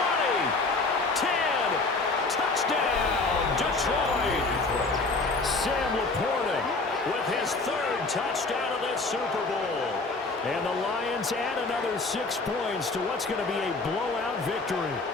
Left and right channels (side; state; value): right; quieter; 3.6 dB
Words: 10, touchdown, Detroit. Sam Laporta with his 3rd touchdown of this Super Bowl. And the Lions add another 6 points to what's going to be a blowout victory.